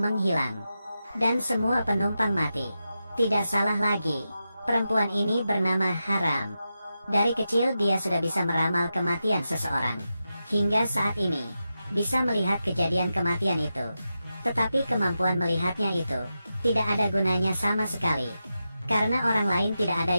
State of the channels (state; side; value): inverted; both; correlation -0.90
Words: dan semua penumpang mati. Tidak salah lagi, perempuan ini bernama Haram. Dari kecil dia sudah bisa meramal kematian seseorang. Hingga saat ini, bisa melihat kejadian kematian itu. Tetapi kemampuan melihatnya itu, tidak ada gunanya sama sekali. Karena orang lain tidak ada